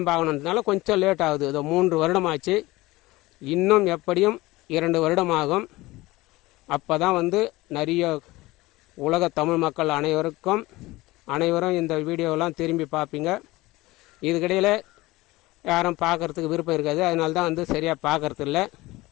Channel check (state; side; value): quieter; right; 19.9 dB